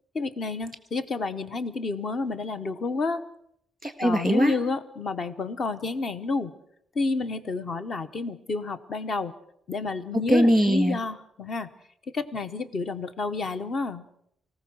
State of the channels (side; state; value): both; normal; correlation 0.82